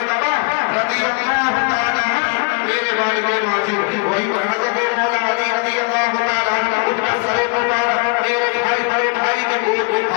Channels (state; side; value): quieter; right; 33.0 dB